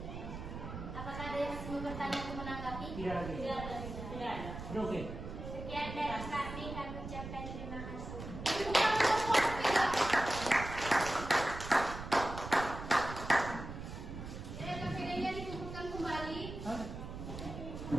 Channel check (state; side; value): noise; right; rumble, 9 dB below the sound